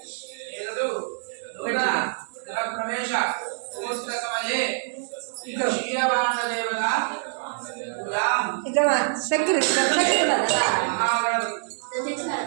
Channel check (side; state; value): left; silent; digital silence